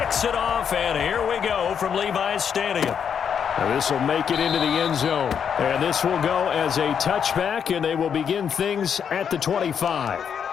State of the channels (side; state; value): right; quieter; 7.6 dB